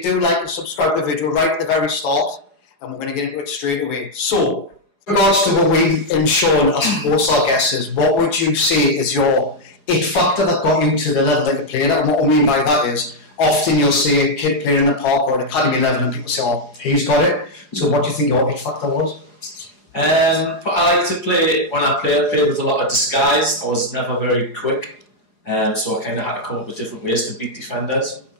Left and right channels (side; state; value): right; late; 4.8 ms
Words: do like and subscribe to the video right at the very start, and we're going to get into it straight away. So, in regards to what we and Sean asked most of our guests is, what would you say is your it factor that got you to the level that you played at? And what I mean by that is, often you'll see a kid playing in the park or an academy level and people say, oh, he's got it. So what do you think your it factor was? I like to play, when I played with a lot of disguise. I was never very quick, so I kind of had to come up with different ways to beat defenders.